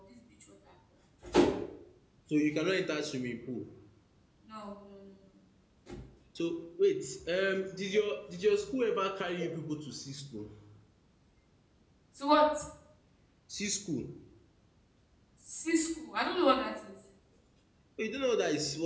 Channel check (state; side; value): identical; both; correlation 1.00